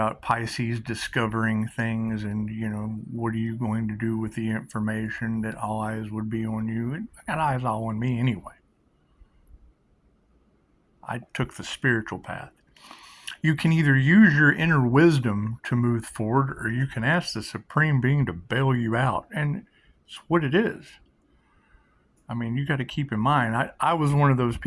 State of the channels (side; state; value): both; identical; correlation 1.00